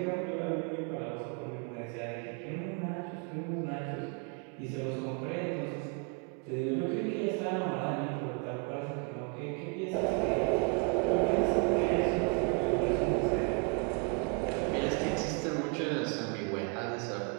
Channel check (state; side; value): quieter; left; 34.4 dB